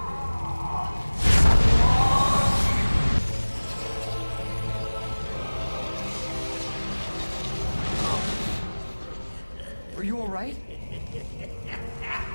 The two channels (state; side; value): inverted; both; correlation -1.00